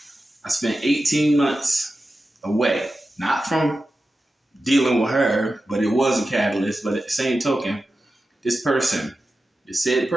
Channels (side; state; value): both; normal; correlation 0.92